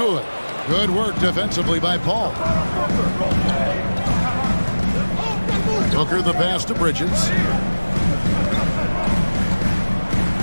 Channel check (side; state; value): both; inverted; correlation -1.00